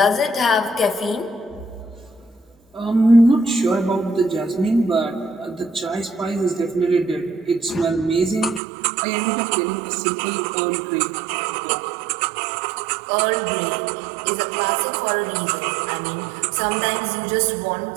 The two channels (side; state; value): left; drops out; at 8.6 s